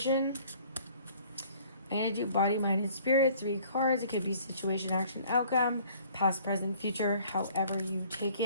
I'm going to do body, mind, and spirit. 3 cards. It could be situation, action, outcome, past, present, future, however you take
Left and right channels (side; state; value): both; inverted; correlation -0.55